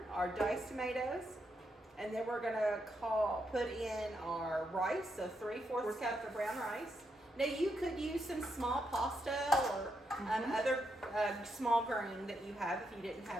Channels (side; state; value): both; normal; correlation 0.81